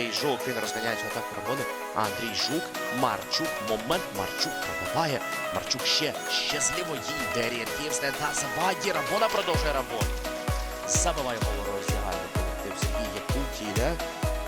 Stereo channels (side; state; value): both; identical; correlation 1.00